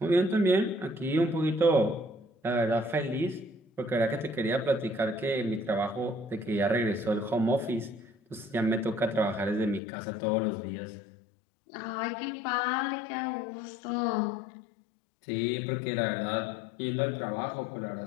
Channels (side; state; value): right; drops out; at 9.8 s